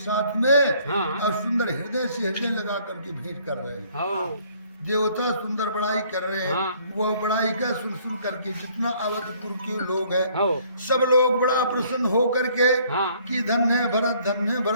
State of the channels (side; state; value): both; inverted; correlation -0.61